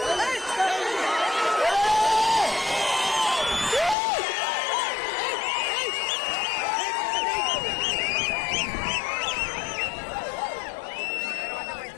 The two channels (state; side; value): drops out; right; at 4.0 s